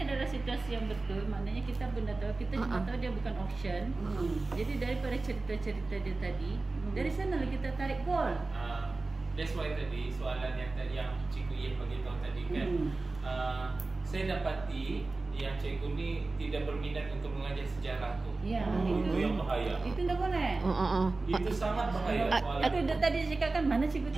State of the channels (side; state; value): left; quieter; 3.4 dB